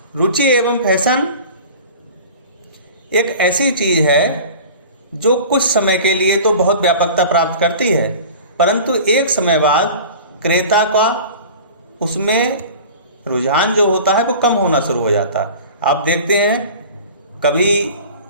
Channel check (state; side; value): inverted; both; correlation -0.39